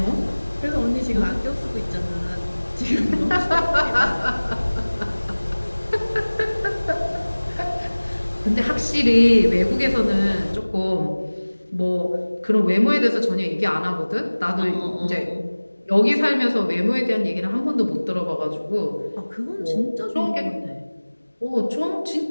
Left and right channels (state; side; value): inverted; both; correlation -1.00